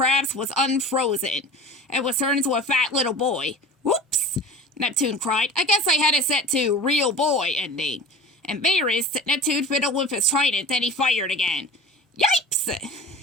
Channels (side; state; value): both; normal; correlation 0.38